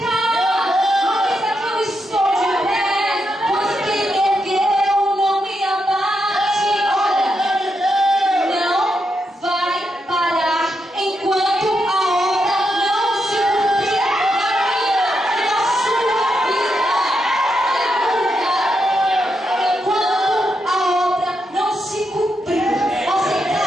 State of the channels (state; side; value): normal; both; correlation 0.83